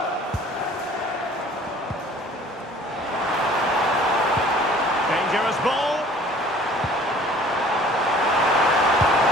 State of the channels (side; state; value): both; normal; correlation 0.51